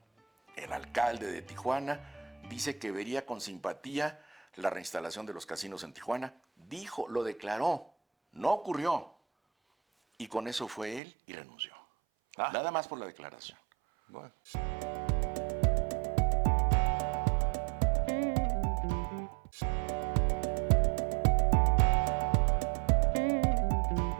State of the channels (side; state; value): left; drops out; at 11.0 s